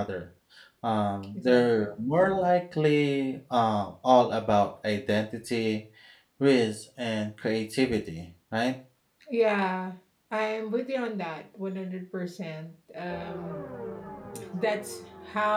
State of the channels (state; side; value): identical; both; correlation 1.00